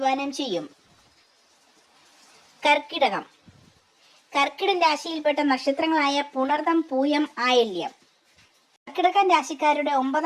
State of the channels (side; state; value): both; identical; correlation 1.00